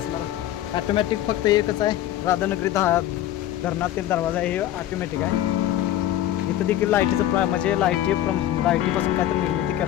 ॲटोमॅटिक फक्त एकच आहे, राधानगरी धरणातील दरवाजा हे ऑटोमॅटिक आहे. इथं देखील लाईटीचं म्हणजे लाईटीपासून काहीतरी निर्मिती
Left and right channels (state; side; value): quieter; right; 12.8 dB